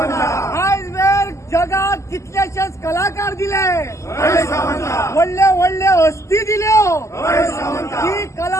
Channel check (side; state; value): right; late; 0.14 ms